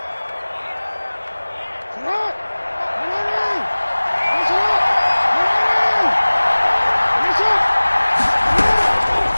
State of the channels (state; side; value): inverted; both; correlation -1.00